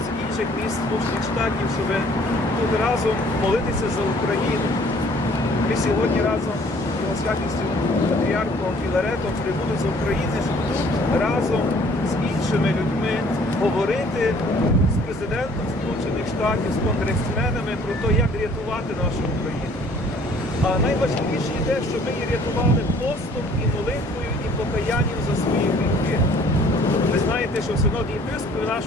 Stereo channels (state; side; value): normal; both; correlation 0.57